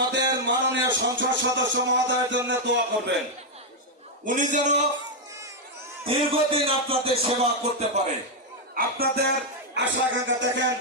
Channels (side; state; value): both; normal; correlation -0.01